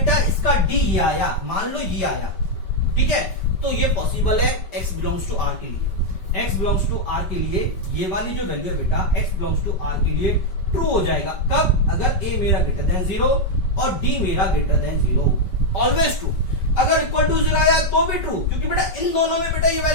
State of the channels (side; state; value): right; late; 5.1 ms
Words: इसका d ये आया, मान लो ये आया, ठीक है, तो ये पॉसिबल है x बिलोंग्स टू r के लिए। x बिलोंग्स टू r के लिए ये वाली जो वैल्यू है बेटा x बिलोंग्स टू r के लिए ट्रू हो जाएगा। कब? अगर a मेरा ग्रेटर देन 0 और d मेरा ग्रेटर देन 0, ऑलवेज ट्रू। अगर इक्वल टू 0 आया तो भी ट्रू, क्योंकि बेटा इन दोनों में बेटा ये